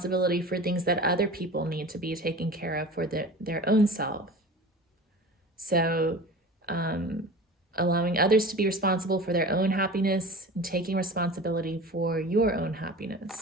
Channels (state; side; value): normal; both; correlation 0.36